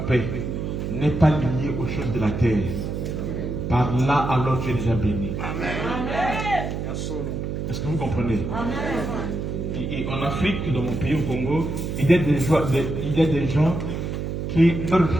paix n'est pas lié aux choses de la terre. Par là, alors tu es déjà béni. Amen. Est-ce que vous comprenez? Amen. Et en Afrique, dans mon pays, au Congo, il y a des gens qui, leur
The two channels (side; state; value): right; noise; hum, 3 dB below the sound